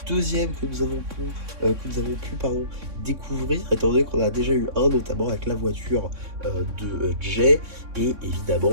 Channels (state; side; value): late; left; 3.6 ms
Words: deuxième que nous avons pu découvrir étant donné qu'on a déjà eu un notamment avec la voiture de Jay et